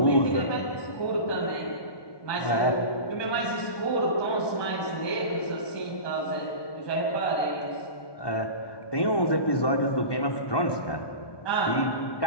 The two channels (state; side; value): late; right; 1.2 ms